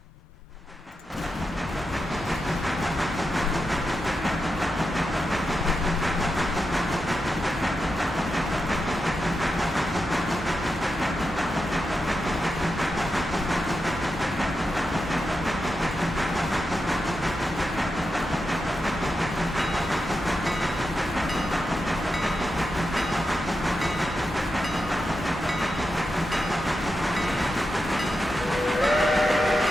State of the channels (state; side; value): normal; both; correlation 0.88